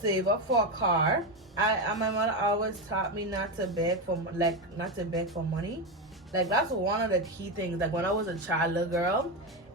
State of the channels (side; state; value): both; normal; correlation 0.13